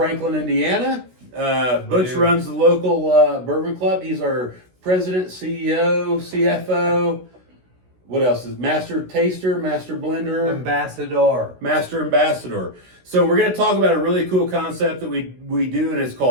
Indiana. Butch runs the local bourbon club. He's our president, CEO, CFO. What else is master taster, master blender, Ambassador. ambassador. So we're going to talk about a really cool concept that we do, and it's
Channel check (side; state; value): left; late; 16 ms